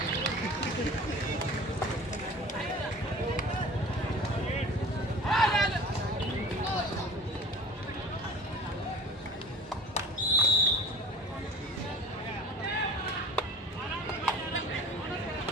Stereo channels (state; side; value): normal; both; correlation 0.41